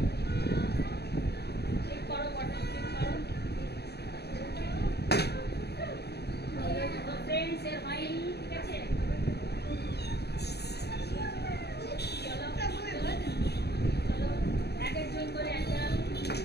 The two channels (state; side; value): late; right; 0.48 ms